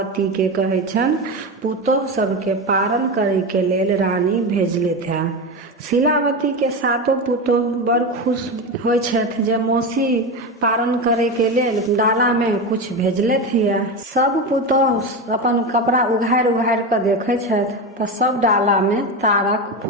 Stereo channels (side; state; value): both; normal; correlation 0.19